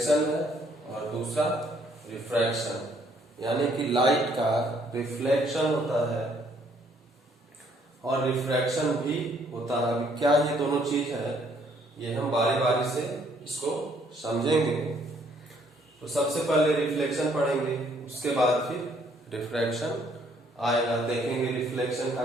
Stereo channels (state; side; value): normal; both; correlation 0.66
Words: है और दूसरा रिफ्रैक्शन। यानी कि लाइट का रिफ्लेक्शन होता है और रिफ्रैक्शन भी होता है। अभी क्या ये दोनों चीज है, ये हम बारी बारी से इसको समझेंगे। तो सबसे पहले रिफ्लेक्शन पढ़ेंगे, उसके बाद फिर रिफ्रैक्शन आएगा। देखेंगे रिफ्लेक्शन का